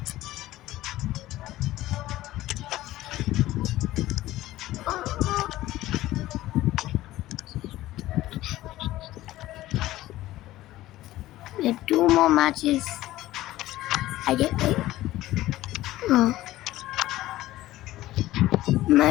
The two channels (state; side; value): quieter; right; 15.9 dB